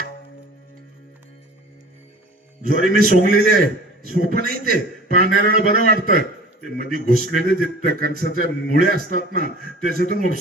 ज्वारी मी सोंगलेली आहे. सोपं नाही ते, पाहणाऱ्याला बरं वाटतं. ते मध्ये घुसलेले जे कणसाच्या मुळे असतात ना, त्याच्यातून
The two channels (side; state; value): both; normal; correlation 0.43